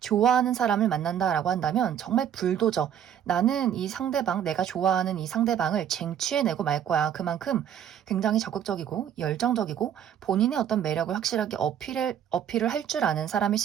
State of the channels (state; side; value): quieter; left; 9.5 dB